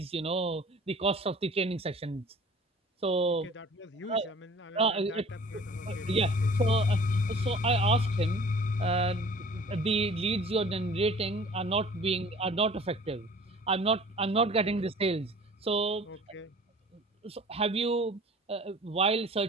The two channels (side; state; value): both; normal; correlation 0.47